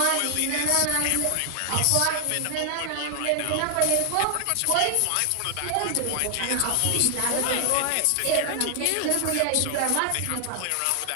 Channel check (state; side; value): different; both; correlation 0.00